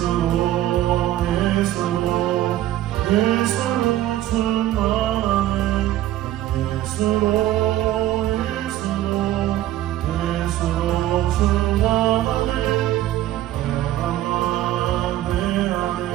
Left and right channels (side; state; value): left; quieter; 13.9 dB